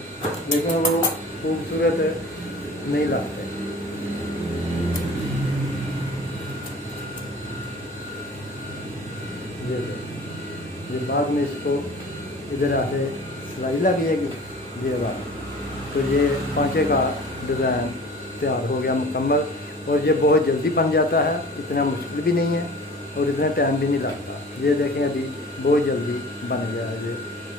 लेकिन वो खूबसूरत नहीं लगते। ये बाद में इसको इधर आके सिलाई लगेगी ये बात, तो ये पांचे का डिज़ाइन तैयार हो गया मुकम्मल। और ये बहुत जल्दी बन जाता है, इतना मुश्किल भी नहीं है और इतना टाइम भी नहीं लगता। ये देखें अभी बहुत जल्दी बन गया है। ये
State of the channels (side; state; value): both; normal; correlation 0.43